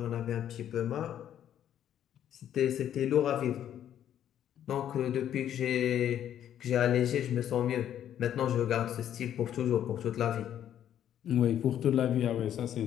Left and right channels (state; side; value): quieter; right; 10.5 dB